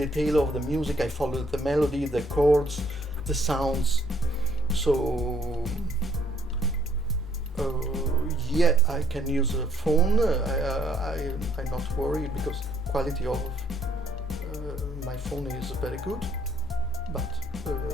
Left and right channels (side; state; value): both; normal; correlation 0.66